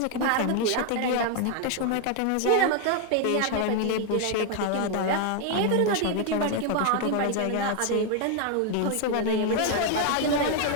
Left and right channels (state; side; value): different; both; correlation 0.00